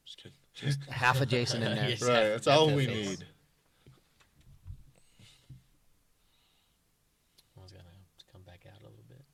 Just kidding. Half a Jason in there. Yes. Right, that's all we Face. need. I was gonna come back out a little bit.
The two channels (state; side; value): identical; both; correlation 1.00